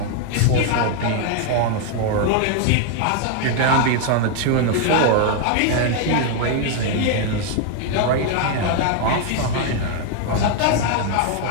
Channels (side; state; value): both; different; correlation 0.00